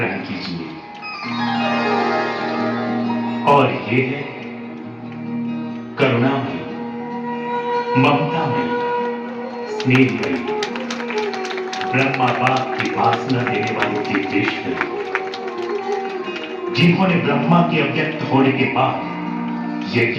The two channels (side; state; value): both; identical; correlation 1.00